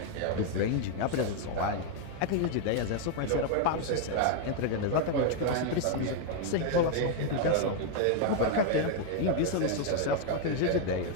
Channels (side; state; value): both; different; correlation 0.00